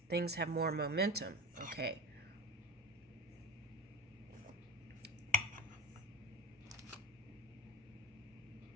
things have more momentum. Okay.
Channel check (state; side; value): normal; both; correlation 0.29